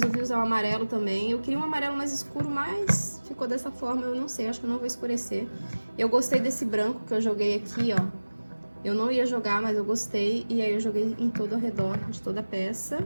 usar o amarelo também. Eu queria um amarelo mais escuro, mas ficou dessa forma, eu não sei, acho que eu não vou escurecer. Eu gostei desse branco que eu joguei aqui, ó. Eu não ia jogar, mas eu gostei, e aí eu joguei em todo ao redor de toda a peça.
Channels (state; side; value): inverted; both; correlation -1.00